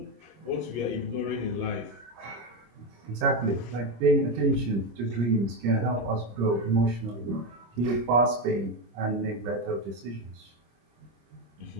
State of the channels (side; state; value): left; late; 25 ms